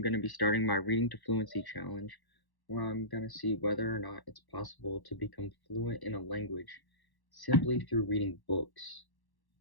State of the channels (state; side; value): late; right; 1.1 ms